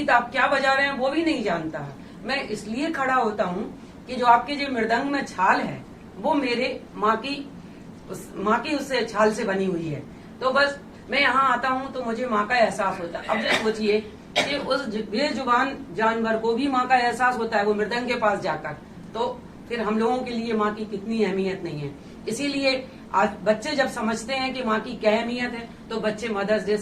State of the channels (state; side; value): identical; both; correlation 1.00